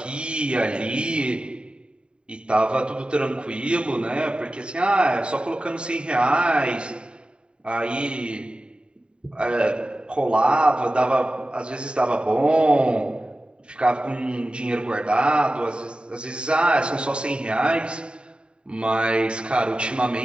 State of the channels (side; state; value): left; late; 0.051 ms